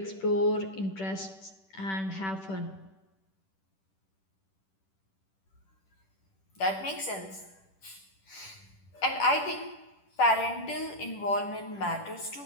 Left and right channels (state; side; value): late; right; 10 ms